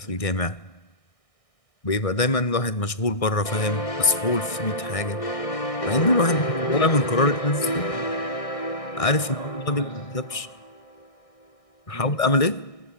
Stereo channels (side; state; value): right; late; 1.6 ms